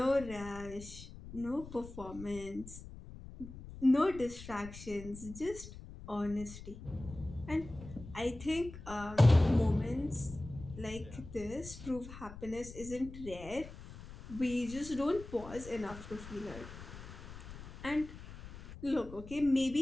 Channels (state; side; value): noise; left; rumble, 14 dB below the sound